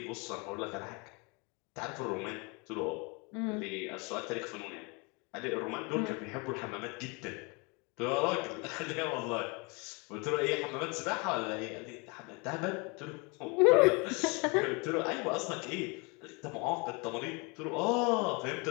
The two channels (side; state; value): right; quieter; 30.1 dB